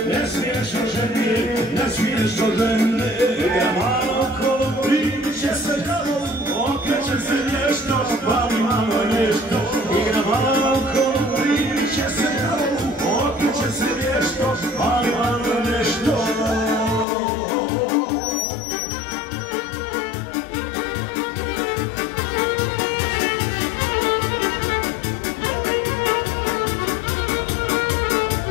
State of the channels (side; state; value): right; drops out; at 17.1 s